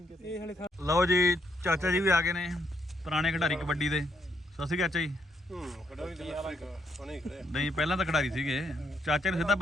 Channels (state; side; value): normal; both; correlation 0.75